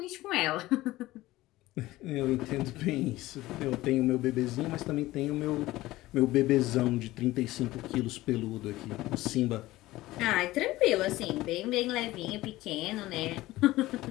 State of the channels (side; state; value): right; quieter; 17.5 dB